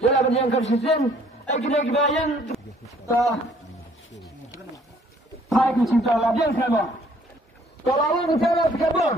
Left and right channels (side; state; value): both; normal; correlation 0.60